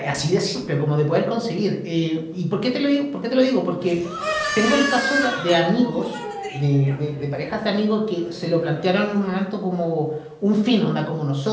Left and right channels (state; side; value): identical; both; correlation 1.00